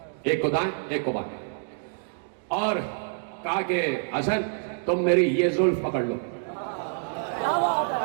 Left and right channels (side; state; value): left; silent; digital silence